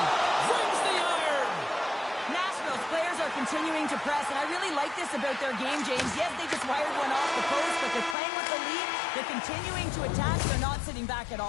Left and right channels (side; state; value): right; drops out; at 8.2 s